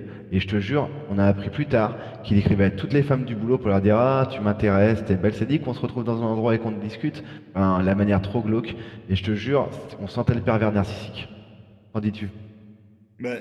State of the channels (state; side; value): identical; both; correlation 1.00